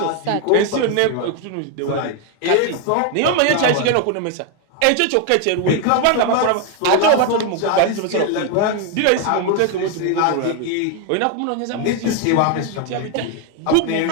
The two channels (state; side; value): different; both; correlation 0.01